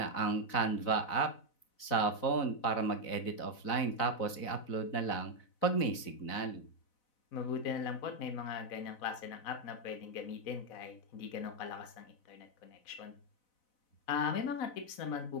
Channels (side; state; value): right; late; 4.0 ms